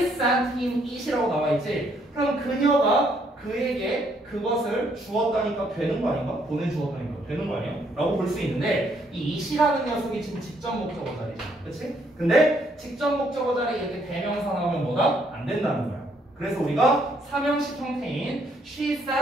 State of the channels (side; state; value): both; normal; correlation 0.70